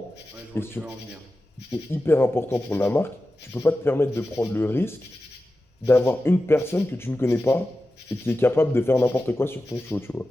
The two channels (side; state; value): both; normal; correlation 0.93